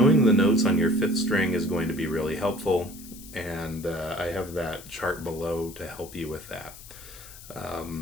the notes on your 5th string is going to be really helpful, and I have that chart below to help you with that.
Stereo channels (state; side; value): noise; left; hiss, 17 dB below the sound